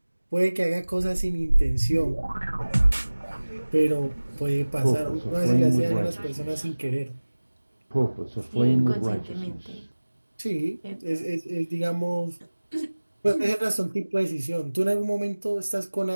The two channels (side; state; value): both; inverted; correlation -1.00